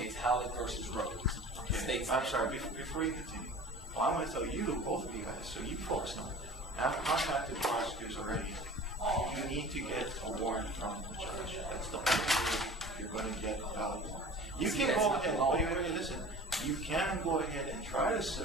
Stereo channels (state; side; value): normal; both; correlation 0.41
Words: Howlett versus Rhodes, states. I'm sorry, before you continue, well, I'm going to tell you, both of you guys, so you folks know. I've contacted the prosecutors already. You need to get a warrant from the judge. That's the only way you're going to get a valid warrant. You can go ahead, wait, listen. You can go ahead and try to